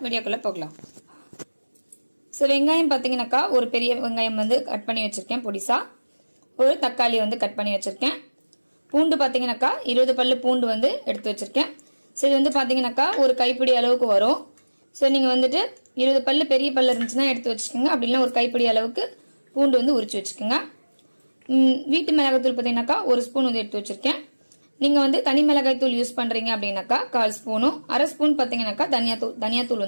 வீடியோக்குள்ள போகலாம். சோ வெங்காயம் பாத்தீங்கன்னாக்கா ஒரு பெரிய வெங்காயம் வந்து கட் பண்ணி வச்சிருக்கேன் பொடிசா. ஒரு தக்காளி வந்து கட் பண்ணி வச்சிருக்கேன். பூண்டு பாத்தீங்கன்னாக்கா 20 பல்லு பூண்டு வந்து எடுத்து வச்சிருக்கேன். சோ இது வந்து பாத்தீங்கன்னாக்கா ஒரு கைப்பிடி அளவுக்கு வரும். சோ நீங்க வந்துட்டு 20 பல்லு பெரிய பல்லு இருந்துச்சுன்னா எடுத்து வச்சுக்கோங்க. அப்படி இல்ல ஒரு கைப்பிடி அளவுக்கு பூண்டு வந்து உரிச்சு வச்சுக்கோங்க. வீட்டு மிளகாய்த்தூள் பார்த்தீங்கன்னாக்கா ஒரு ஸ்பூன் வந்து எடுத்து வச்சிருக்கேன். நீங்க வந்து தனி மிளகாய் தூள் யூஸ் பண்றீங்க அப்படின்னாக்கா 1/4 ஸ்பூனும் 1/2 ஸ்பூன் பார்த்தீங்கன்னாக்கா தனியாத்தூள்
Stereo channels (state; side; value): inverted; both; correlation -1.00